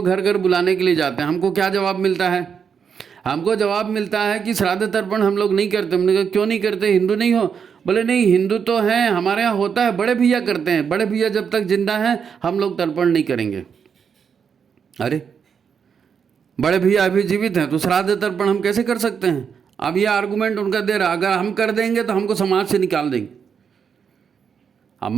घर घर बुलाने के लिए जाते हैं, हमको क्या जवाब मिलता है? हमको जवाब मिलता है कि श्राद्ध तर्पण हम लोग नहीं करते। हमने कहा क्यों नहीं करते? हिंदू नहीं हो? बोले नहीं, हिंदू तो हैं, हमारे यहाँ होता है, बड़े भैया करते हैं। बड़े भैया जब तक जिंदा हैं हम लोग तर्पण नहीं करेंगे। अरे बड़े भैया अभी जीवित हैं तो श्राद्ध तर्पण हम कैसे कर सकते हैं? अब ये आर्गूमेंट उनका दे रहा, अगर हम कर देंगे तो हमको समाज से निकाल देंगे।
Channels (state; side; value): quieter; left; 6.9 dB